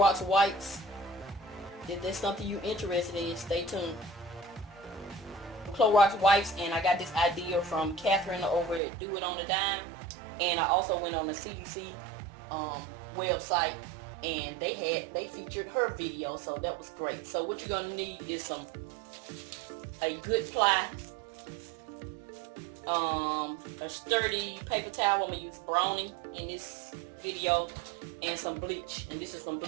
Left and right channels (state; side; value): drops out; left; at 8.8 s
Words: wipes. If there's something you're interested in, stay tuned. Clorox wipes, and I got this idea from Catherine over at Do It on a Dime. And I also went on the CDC website, and they featured her video, so that was great. So what you're going to need is a good ply, a sturdy paper towel. I'm gonna use Brownie in this video, and some bleach. And this is some